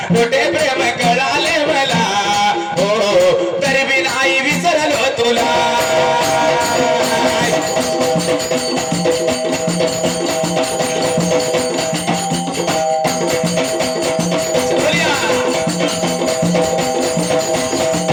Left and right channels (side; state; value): both; identical; correlation 1.00